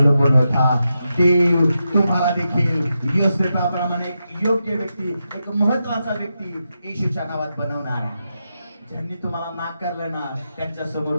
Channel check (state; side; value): inverted; both; correlation -0.87